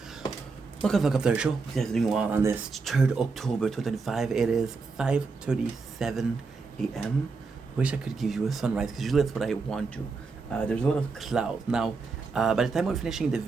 Welcome to the show. You guys are doing well on this 3rd October 2025. It is 5:37 a.m. Wish I could give you a sunrise because usually that's what I want to. There's a lot of clouds. Now, by the time we're finishing the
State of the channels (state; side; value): quieter; left; 4.4 dB